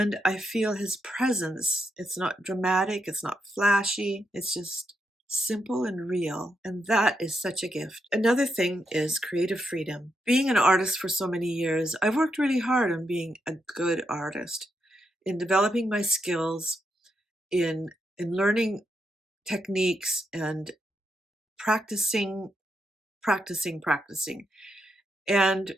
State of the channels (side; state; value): both; normal; correlation 0.82